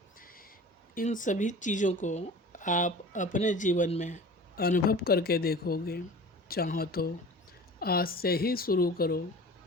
इन सभी चीज़ों को आप अपने जीवन में अनुभव करके देखोगे। चाहो तो आज से ही शुरू करो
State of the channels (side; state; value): both; normal; correlation 0.39